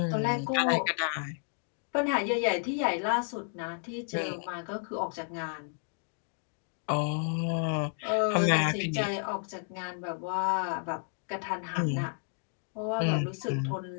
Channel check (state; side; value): silent; right; 57 dB below the other